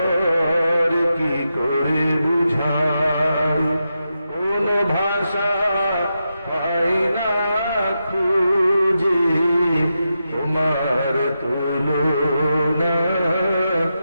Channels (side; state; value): both; inverted; correlation -0.87